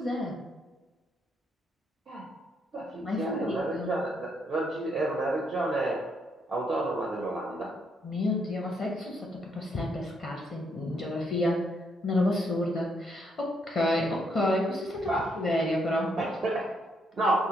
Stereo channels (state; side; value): normal; both; correlation 0.74